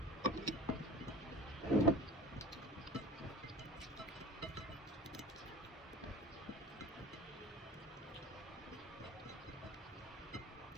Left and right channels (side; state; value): both; normal; correlation 0.38